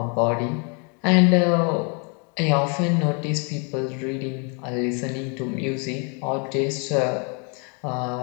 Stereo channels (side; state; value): right; quieter; 36.3 dB